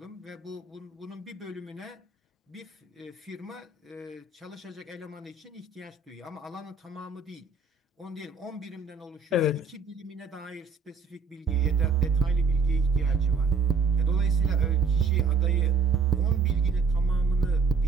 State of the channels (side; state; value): left; quieter; 4.9 dB